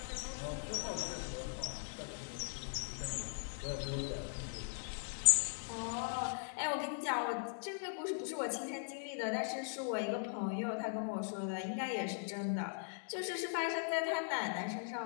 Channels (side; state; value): right; silent; digital silence